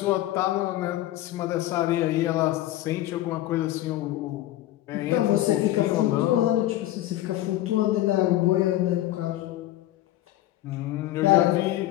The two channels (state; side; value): quieter; right; 14.8 dB